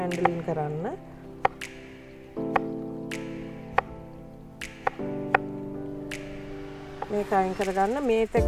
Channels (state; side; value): identical; both; correlation 1.00